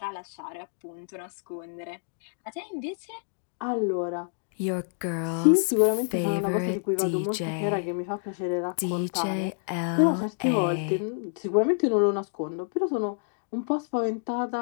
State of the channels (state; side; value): silent; right; digital silence